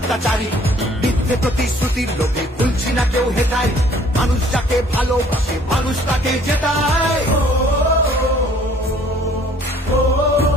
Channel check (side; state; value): both; normal; correlation 0.57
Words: মিথ্যে প্রতিশ্রুতির লোভে ভুলছি না কেউ হেথায়, মানুষ যাকে ভালোবাসে মানুষ তাকে জেতায়।